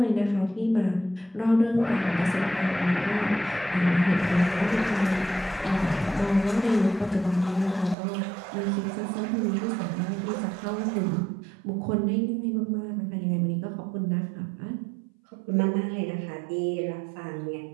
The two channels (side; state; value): left; drops out; at 8.0 s